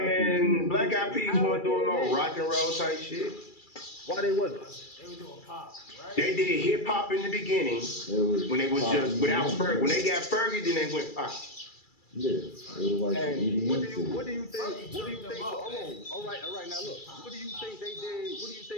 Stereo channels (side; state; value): right; late; 2.3 ms